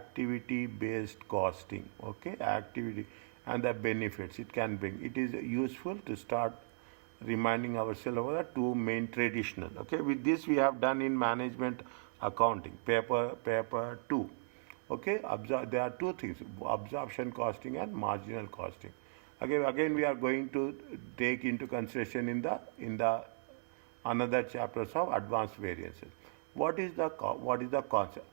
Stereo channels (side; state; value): left; silent; 53 dB below the other